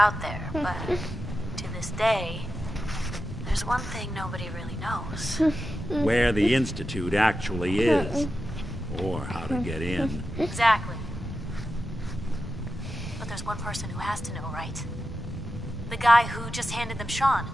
there. But to this day, there's one thing nobody really knows. Where the Institute actually is. Or how to get in. Exactly. But there's one person who has to know, right? The guy who just handed them Sean.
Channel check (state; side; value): normal; both; correlation 0.91